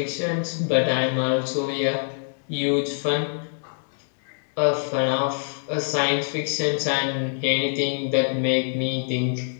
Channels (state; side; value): silent; right; 62 dB below the other